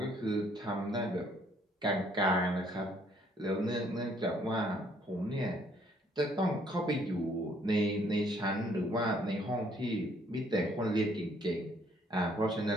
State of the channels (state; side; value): normal; both; correlation 0.64